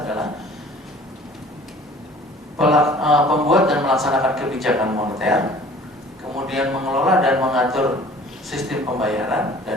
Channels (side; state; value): both; normal; correlation 0.49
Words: adalah pembuat dan melaksanakan kebijakan moneter, kemudian mengelola dan mengatur sistem pembayaran,